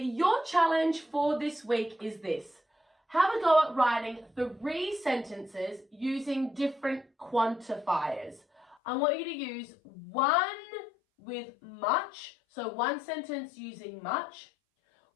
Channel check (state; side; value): drops out; right; at 8.8 s